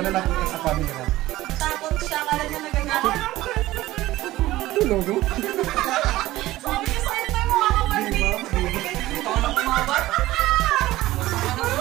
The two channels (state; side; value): quieter; left; 16.7 dB